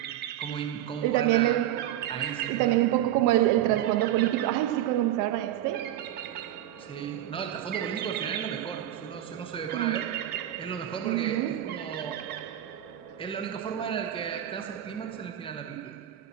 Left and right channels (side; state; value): left; quieter; 12.1 dB